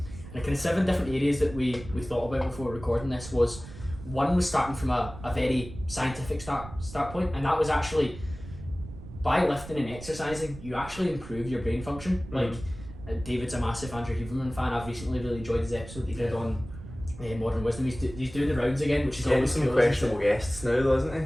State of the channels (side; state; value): right; noise; rumble, 14 dB below the sound